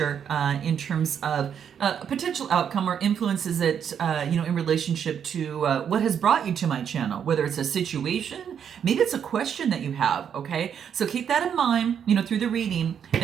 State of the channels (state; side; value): quieter; left; 8.1 dB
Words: in terms of a potential outcome or influences that, in relationship to what has brought you to my channel, whether it's a situation, maybe it's a question that you have, okay? So keep that in mind, through the reading. And